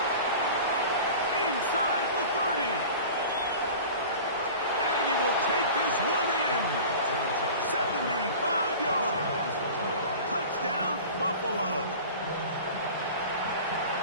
Inside the 30. And he will take this one in. 75 yards. Touchdown, Buffalo.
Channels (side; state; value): both; inverted; correlation -0.38